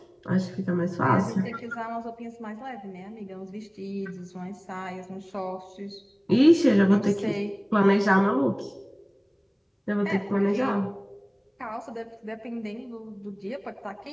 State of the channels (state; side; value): identical; both; correlation 1.00